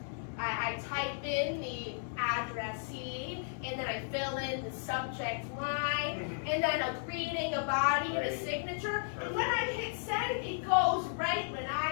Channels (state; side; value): silent; right; digital silence